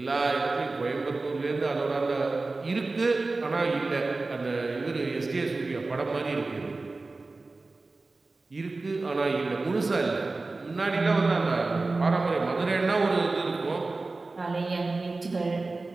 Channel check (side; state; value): left; quieter; 3.5 dB